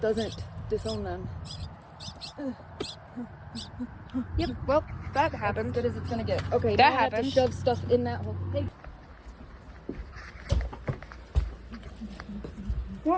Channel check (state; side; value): identical; both; correlation 1.00